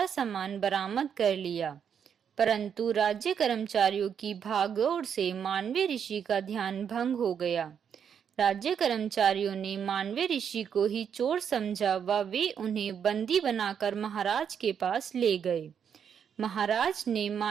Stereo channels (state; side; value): quieter; left; 7.8 dB